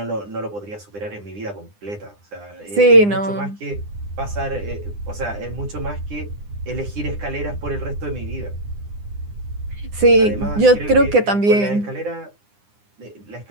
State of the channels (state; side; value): late; left; 9.8 ms